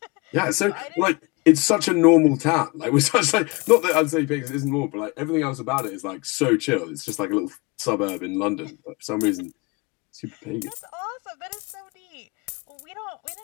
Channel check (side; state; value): right; quieter; 26.4 dB